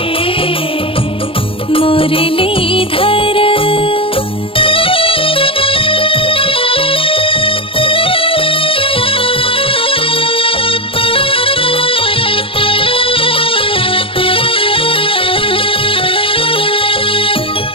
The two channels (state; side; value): late; right; 0.26 ms